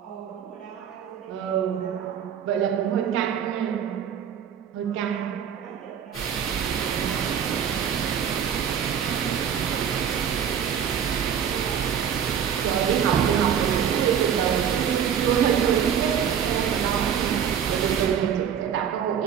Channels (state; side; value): quieter; left; 8.3 dB